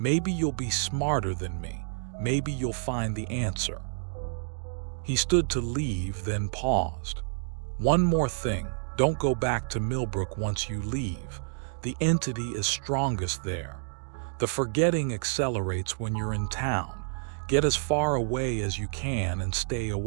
you'll be smarter than me. Maybe you'll find the answer." He stood to leave, then paused. "One more thing, don't go back to Millbrook once you leave. The entity is strongest there. The forgetting accelerates when you're in town. Get as far away as you can and stay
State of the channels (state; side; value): silent; left; digital silence